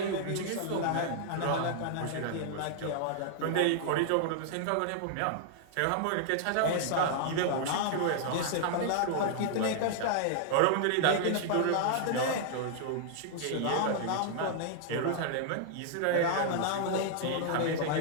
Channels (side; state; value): both; different; correlation -0.01